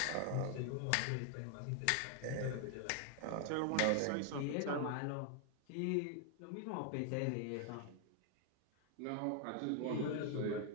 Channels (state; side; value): different; both; correlation 0.00